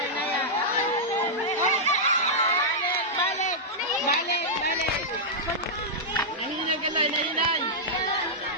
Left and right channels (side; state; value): both; normal; correlation -0.09